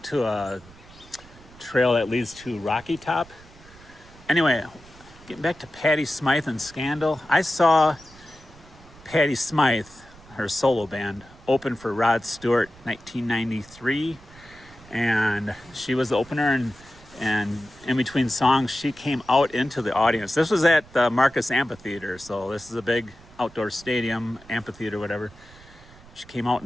a trail that leads to Rocky Top. Anyway, getting back to Patti Smythe and Scandal. I saw Patti Smythe, her solo band, open for Rod Stewart 1993. And she was the opener, and in between songs, she came out into the audience. This was at the Marcus Amphitheater, so this is a big outdoor stadium, amphitheater, whatever. She came out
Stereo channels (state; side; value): noise; right; rumble, 23 dB below the sound